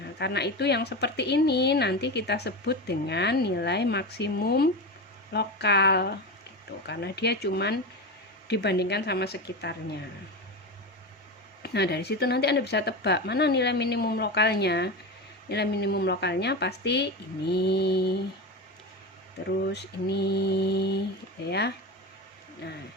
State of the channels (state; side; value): normal; both; correlation 0.21